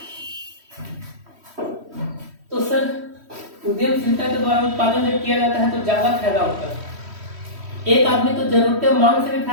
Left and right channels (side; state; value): left; late; 3.1 ms